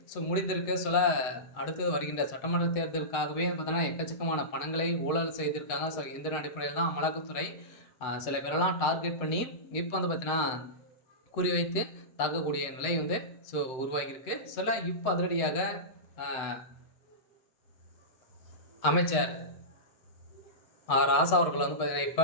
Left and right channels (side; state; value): right; late; 7.9 ms